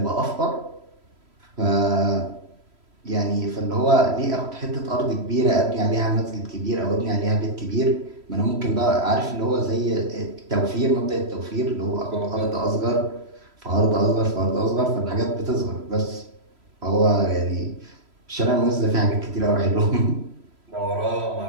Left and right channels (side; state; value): left; late; 3.0 ms